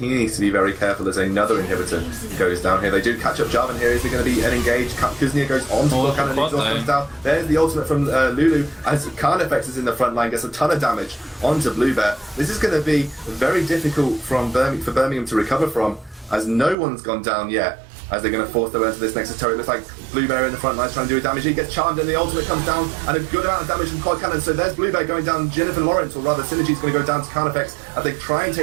needs to be very careful as another inhibitor goes down here. They do catch up Jarvan here. Is there going to be an engage? Kuznia goes on to block and exhaust comes down. There's the ultimate from Lulu as Carnifex is in the front line, gets a ton of damage onto Bluebear. This is going to be very difficult for Birmingham to recover from, as no one's gone down yet. As they're going to force their way into this Nexus turret. It looks like Bluebear in the front line trying to do a damage. He gets charmed and the ultimate comes down, and a good amount of damage from Quad Cannon. So there's Bluebear going down Jennifer Lawrence, or rather Synergy's going to go down to Carnifex as they try and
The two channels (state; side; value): drops out; left; at 16.8 s